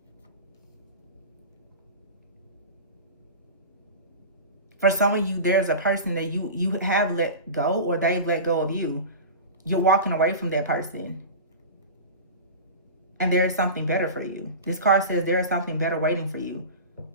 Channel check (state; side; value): inverted; both; correlation -0.31